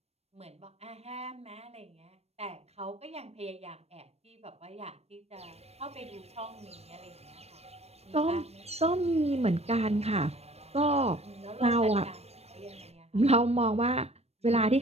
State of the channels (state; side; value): late; left; 0.31 ms